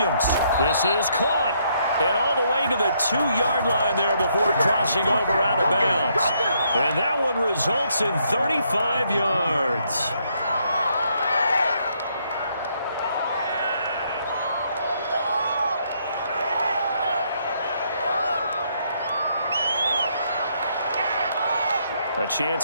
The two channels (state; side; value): inverted; both; correlation -0.72